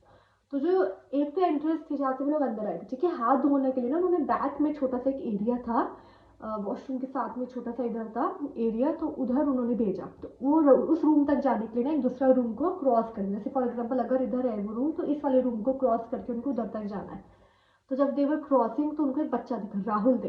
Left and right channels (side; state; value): both; identical; correlation 1.00